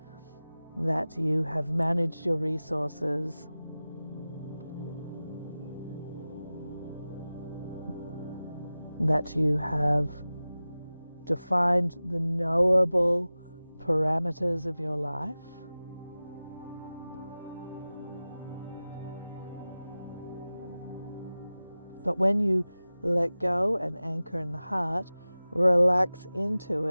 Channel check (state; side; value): inverted; both; correlation -0.96